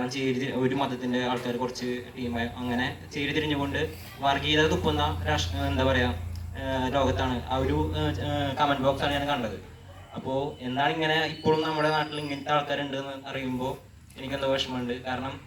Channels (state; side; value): identical; both; correlation 1.00